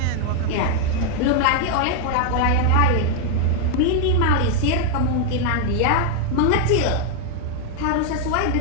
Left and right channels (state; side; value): different; both; correlation 0.00